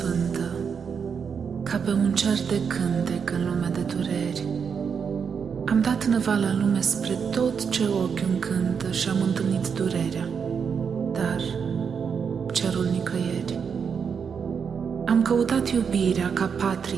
ca pe un cer de cântec în lume de dureri. Am dat năval în lume spre tot ce ochi încântă și am întâlnit durerea, dar cerul nicăieri. Am căutat iubirea ca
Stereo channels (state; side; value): quieter; left; 6.5 dB